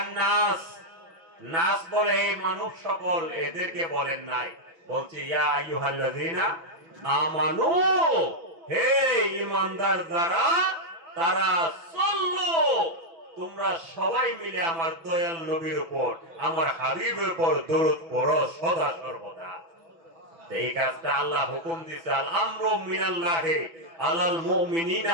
নাস, নাস বলে হে মানুষ সকল, এদেরকে বলেন নাই, বলছে ইয়া আইয়ুহাল্লাযীনা আমানু, হে ঈমানদার যারা তারা সাল্লু, তোমরা সবাই মিলে আমার দয়াল নবীর উপর, আমার হাবিবের উপর দরুদ পড়ো সদা সর্বদা। এই কাজটা আল্লাহ হুকুম দিয়েছে, আল আমরু মিনাল্লাহি আলাল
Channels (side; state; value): left; late; 6.0 ms